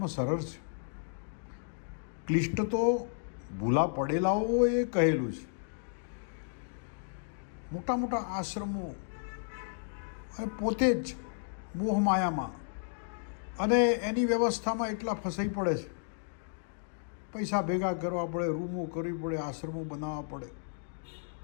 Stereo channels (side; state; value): right; silent; digital silence